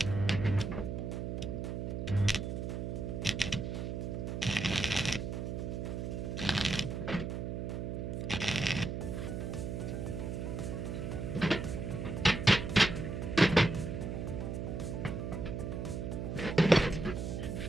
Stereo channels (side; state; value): right; noise; hum, 3 dB below the sound